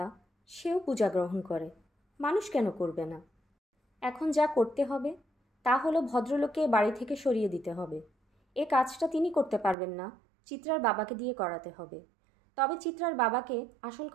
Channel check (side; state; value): left; drops out; at 9.8 s